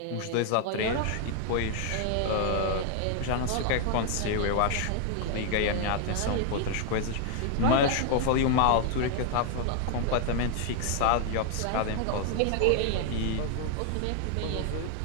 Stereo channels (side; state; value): both; different; correlation 0.00